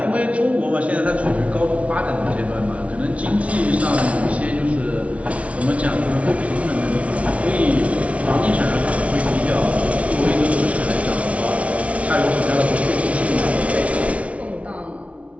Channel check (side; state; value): left; late; 0.064 ms